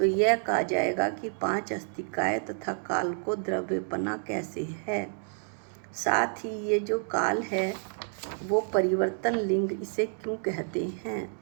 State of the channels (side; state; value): left; silent; 58 dB below the other